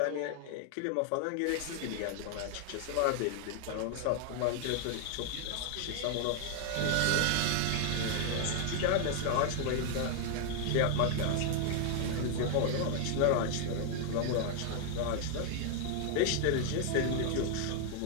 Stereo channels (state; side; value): different; both; correlation 0.00